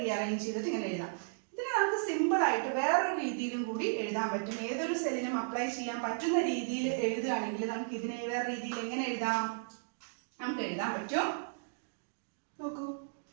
ചെയ്തിട്ട് ഇങ്ങനെ എഴുതാം. ഇതിനെ നമുക്ക് സിമ്പിൾ ആയിട്ട് വേറൊരു രീതിയിലും കൂടി എഴുതാൻ പറ്റും. ഏതൊരു സെല്ലിനും അപ്ലൈ ചെയ്യാൻ പറ്റുന്ന രീതിയിൽ എഴുതുകയാണെങ്കിൽ നമുക്ക് ഇതിനെ വേറെ രീതിയിൽ എങ്ങനെ എഴുതാം? നമുക്ക് എഴുതാൻ പറ്റും. നോക്കൂ,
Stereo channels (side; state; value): left; silent; digital silence